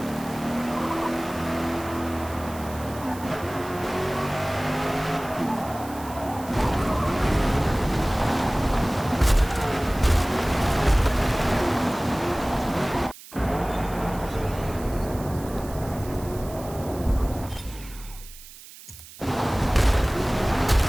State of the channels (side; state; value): right; noise; hiss, 18 dB below the sound